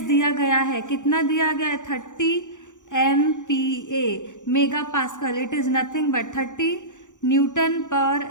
दिया गया है, कितना दिया गया है, 30 MPa mega pascal. It is nothing but 30 newton per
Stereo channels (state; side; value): late; right; 0.86 ms